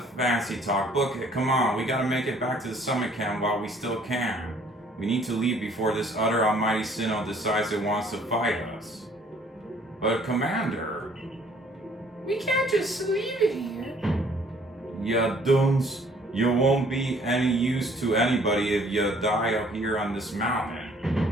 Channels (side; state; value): both; normal; correlation 0.59